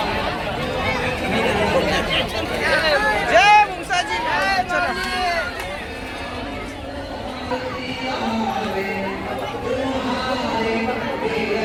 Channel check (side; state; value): both; identical; correlation 1.00